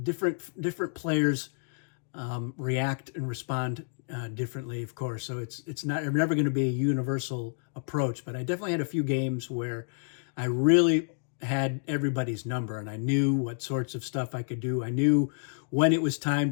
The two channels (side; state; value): right; silent; digital silence